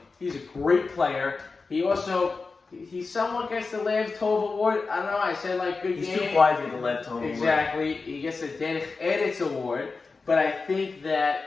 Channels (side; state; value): right; quieter; 4.2 dB